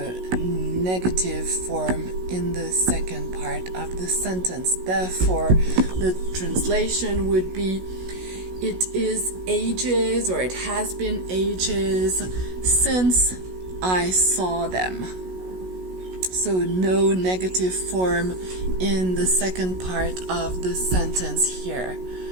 negative form in the second part of the sentence. Therefore, the translation would be, it is ages, or it has been ages since I saw them. So no negative form in the second part of the sentence here.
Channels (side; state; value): left; late; 16 ms